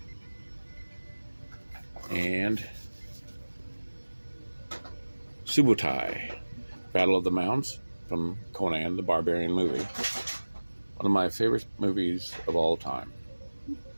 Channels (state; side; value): inverted; both; correlation -1.00